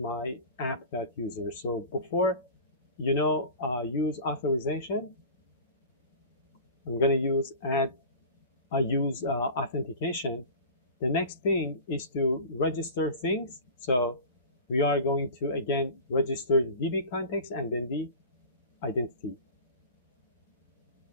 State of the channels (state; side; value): inverted; both; correlation -0.36